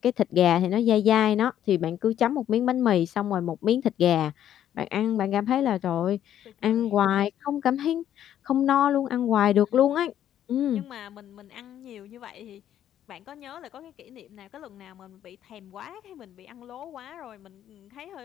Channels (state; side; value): quieter; right; 10.8 dB